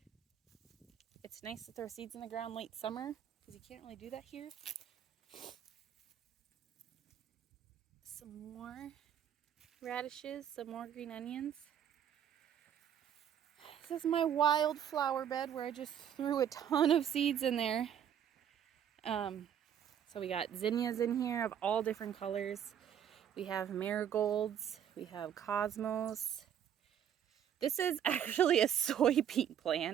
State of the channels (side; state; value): left; quieter; 9.3 dB